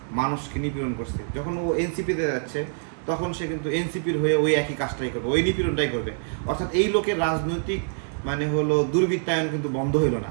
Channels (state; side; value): silent; left; digital silence